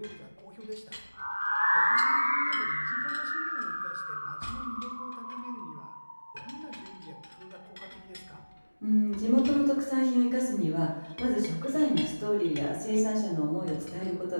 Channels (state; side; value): inverted; both; correlation -1.00